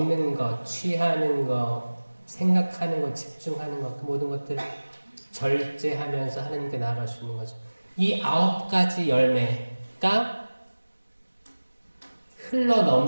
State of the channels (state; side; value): inverted; both; correlation -1.00